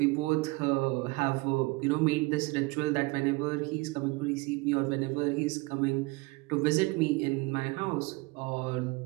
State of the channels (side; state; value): left; quieter; 24.7 dB